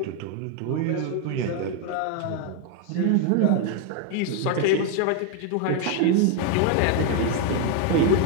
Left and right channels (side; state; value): both; different; correlation 0.01